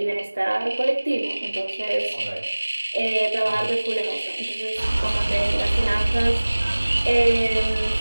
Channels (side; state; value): both; inverted; correlation -1.00